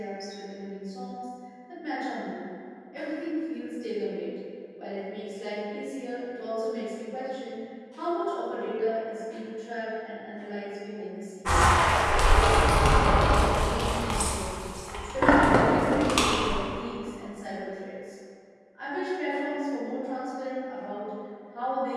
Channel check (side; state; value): both; identical; correlation 1.00